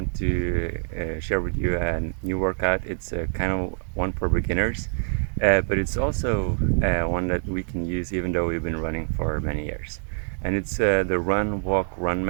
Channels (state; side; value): silent; left; digital silence